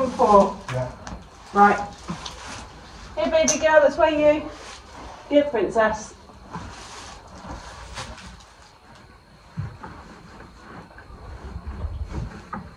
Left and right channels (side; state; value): both; identical; correlation 1.00